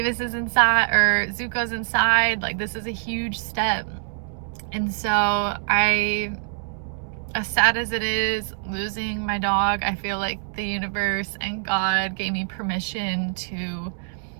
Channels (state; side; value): silent; left; 62 dB below the other